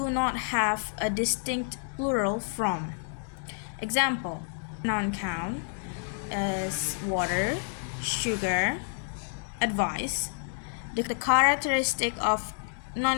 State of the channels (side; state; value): right; silent; digital silence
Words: not have a distinct plural form. Example, non-count is water, sugar, advice. The characteristic of